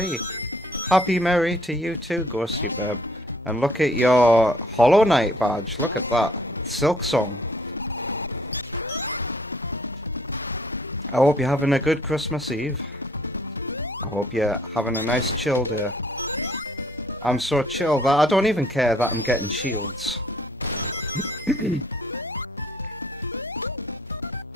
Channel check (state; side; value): normal; both; correlation 0.60